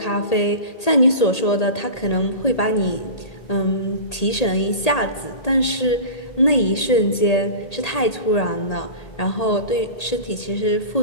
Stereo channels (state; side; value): late; right; 1.8 ms